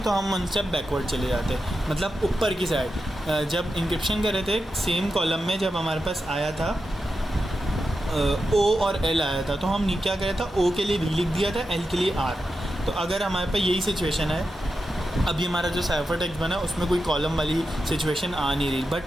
हम 1 स्टेप बैकवर्ड चले जाते, मतलब ऊपर की साइड। जब इंक्रिप्शन कर रहे थे सेम कॉलम में, जब हमारे पास आया था ओ और एल आया था, तो हम क्या किया था, ओ के लिए वी लिख दिया था, एल के लिए आर। तो अगर हमारे पास यही सिचुएशन है, अभी हमारा जो साइफर टेक्स्ट बना उसमें कोई कॉलम वाली सिचुएशन आ नहीं रही,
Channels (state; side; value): normal; both; correlation 0.89